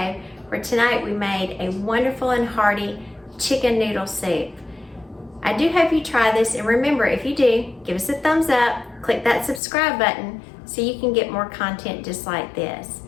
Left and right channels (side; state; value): right; drops out; at 9.6 s